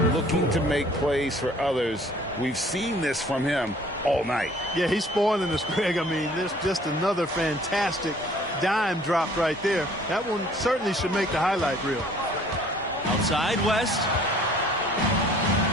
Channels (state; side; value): normal; both; correlation 0.55